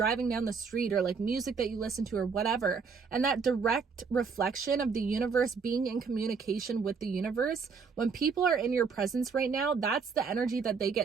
down the street, or like music that you listen to or whatever. And that direct reflection of the universe being in communication with the universe, when people are in your presence right now, that's the energy that they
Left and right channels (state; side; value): quieter; left; 5.4 dB